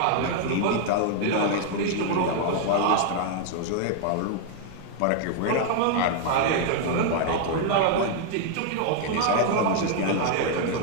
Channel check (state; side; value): different; both; correlation 0.00